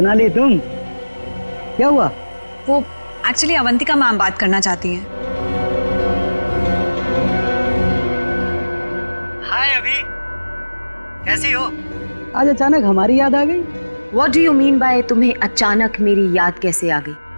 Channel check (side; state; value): both; inverted; correlation -1.00